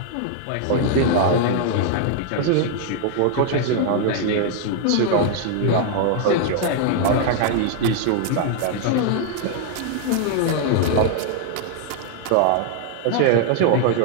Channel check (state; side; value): different; both; correlation 0.00